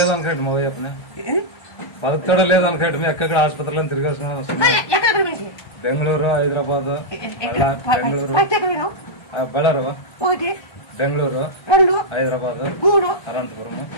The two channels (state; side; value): late; right; 1.2 ms